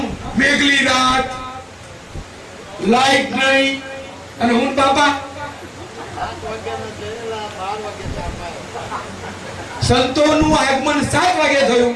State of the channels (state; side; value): identical; both; correlation 1.00